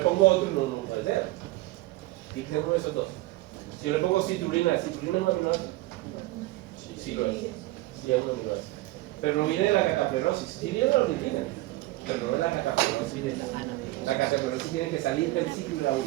pongo otro, no puede ser. Tiene que ser uno de esos dos. Si yo le pongo citrulina, ¿la citrulina es un aminoácido? Sí lo es. Sí es un aminoácido. Pero no viene de la cataplerosis, sí viene de la ornitina, pero no de la cataplerosis. La cataplerosis tiene que salir del ciclo de la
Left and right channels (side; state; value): left; quieter; 19.1 dB